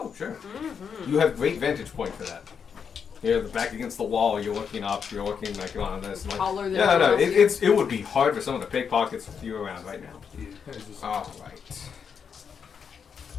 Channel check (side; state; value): right; quieter; 6.7 dB